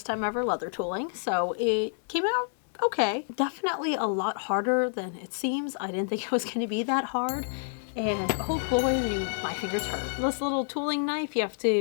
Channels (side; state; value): right; silent; 59 dB below the other